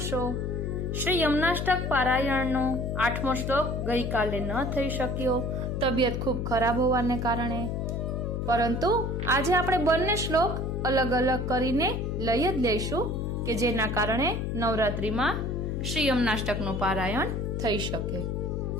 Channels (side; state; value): left; noise; hum, 1 dB below the sound